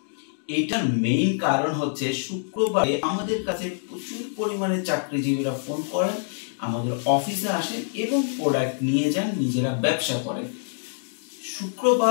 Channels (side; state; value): right; silent; digital silence